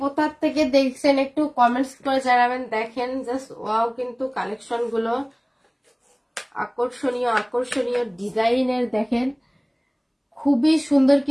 থেকে দেখছেন একটু কমেন্টস করে জানাবেন। দেখেন জাস্ট ওয়াও, কিন্তু কালেকশন গুলো আকর্ষণীয় ডিজাইনের। দেখেন খুবই সুন্দর,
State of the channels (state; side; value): identical; both; correlation 1.00